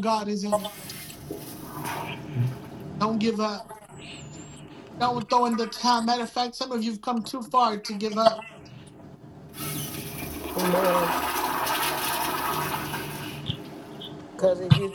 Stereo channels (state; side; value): identical; both; correlation 1.00